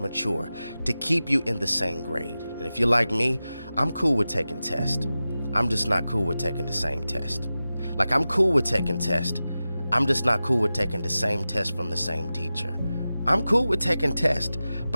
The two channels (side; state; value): both; inverted; correlation -0.94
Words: to keep you in the same grade. And if you're like me, I'm cool with taking tests. I'm just not cool with taking the same test. Like, I'm cool with taking tests. I'm just not cool with taking the same test from the same teacher. I'm cool with taking tests,